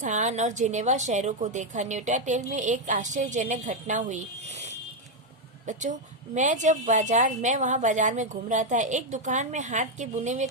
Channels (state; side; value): normal; both; correlation 0.03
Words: और जिनेवा शहरों को देखा। न्यूटाटेल में एक आश्चर्यजनक घटना हुई बच्चों। मैं वहाँ बाजार में घूम रहा था। एक दुकान में हाथ के बुने हुए